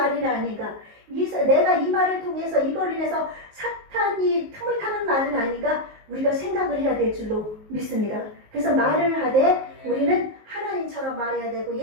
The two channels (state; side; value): late; left; 19 ms